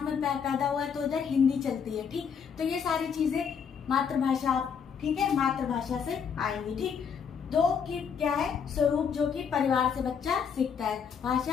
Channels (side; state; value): right; quieter; 6.8 dB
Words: में पैदा हुआ है तो उधर हिंदी चलती है। ठीक, तो ये सारी चीजें मातृभाषा, ठीक है, मातृभाषा से आएंगी। ठीक, दो की क्या है? स्वरूप, जो कि परिवार से बच्चा सीखता है।